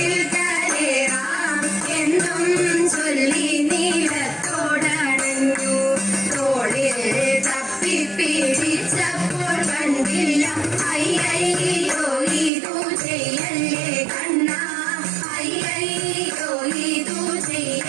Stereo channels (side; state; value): left; drops out; at 12.5 s